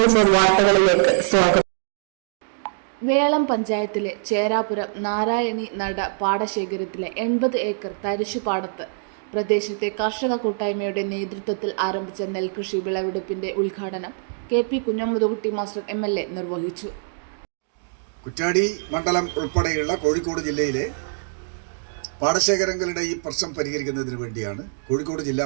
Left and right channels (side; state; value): left; silent; digital silence